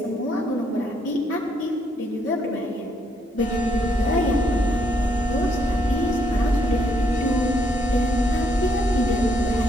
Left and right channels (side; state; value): both; normal; correlation 0.73